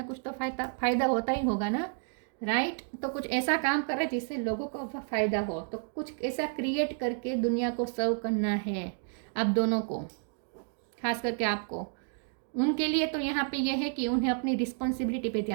कुछ तो फायदा होता ही होगा ना, राइट। तो कुछ ऐसा काम कर रहे हैं जिससे लोगों को फ़ायदा हो, तो कुछ ऐसा क्रिएट करके दुनिया को सर्व करना है आप दोनों को, खास करके आपको। उनके लिए तो यहाँ पे यह है कि उन्हें अपनी रिस्पॉन्सिबिलिटी पे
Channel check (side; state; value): left; silent; 57 dB below the other